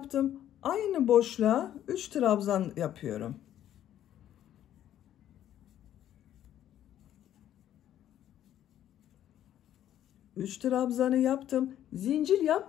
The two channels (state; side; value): quieter; right; 11.5 dB